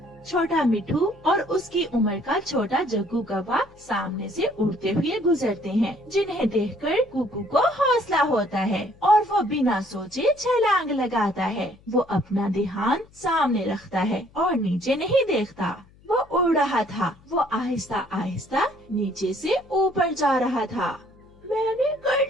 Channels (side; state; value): left; noise; hum, 27 dB below the sound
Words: छोटा मिठू और उसकी उम्र का छोटा जग्गू कौवा सामने से उड़ते हुए गुजरते हैं, जिन्हें देखकर कुकू को हौसला होता है और वो बिना सोचे छलांग लगाता है। वो अपना ध्यान सामने रखता है और नीचे नहीं देखता। वो उड़ रहा था। वो आहिस्ता आहिस्ता नीचे से ऊपर जा रहा था। मैंने